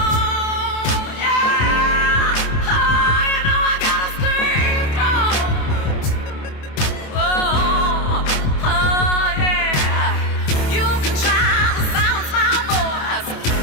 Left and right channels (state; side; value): late; right; 27 ms